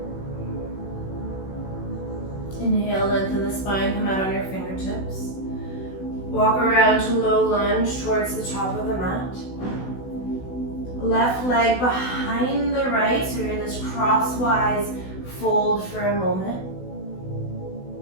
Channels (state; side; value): late; right; 16 ms